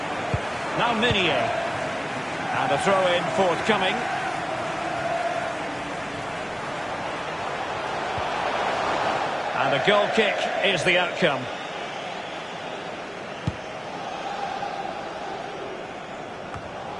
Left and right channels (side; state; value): both; identical; correlation 1.00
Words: Now Minier. And a throw-in forthcoming. And a goal kick is the outcome.